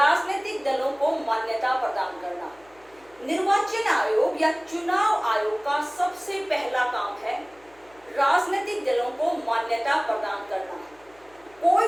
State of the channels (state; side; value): noise; left; hum, 30 dB below the sound